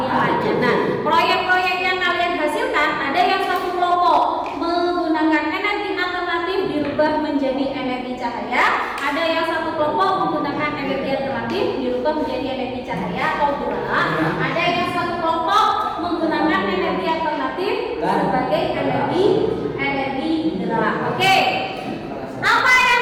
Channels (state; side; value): identical; both; correlation 1.00